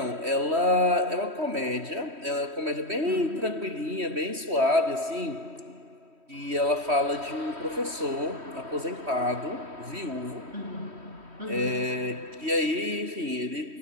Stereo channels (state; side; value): late; left; 3.1 ms